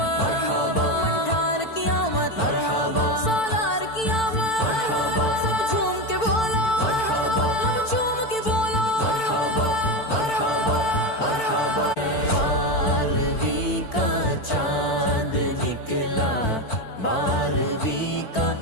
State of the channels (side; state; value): right; late; 4.5 ms